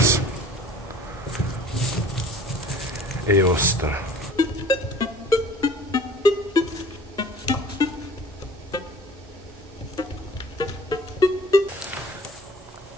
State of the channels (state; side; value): normal; both; correlation 0.48